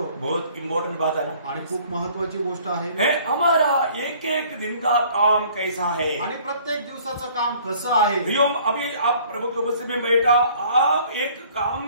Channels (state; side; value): inverted; both; correlation -0.55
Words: बहुत इम्पोर्टेंट बात है ना, आणि खूप महत्वाची गोष्ट आहे। हमारा एक एक दिन का काम कैसा है, आणि प्रत्येक दिवसाचं काम कसं आहे। अभी आप प्रभु के उपस्थिति में बैठा, आप एक काम